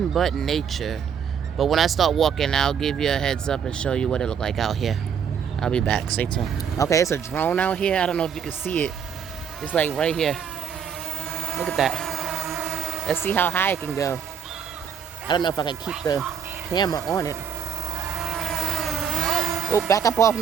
but nature. But when I start walking, I'll give you a heads up and show you what it look like out here. I'll be back. Stay tuned. Okay, it's a drone out here. I don't know if you can see it. It's like right here. Look at that. Let's see how high it can go. I don't know if I can keep the camera on it. Oh, back up off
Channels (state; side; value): quieter; left; 7.6 dB